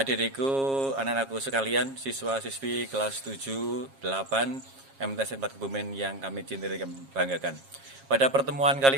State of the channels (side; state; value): left; late; 7.4 ms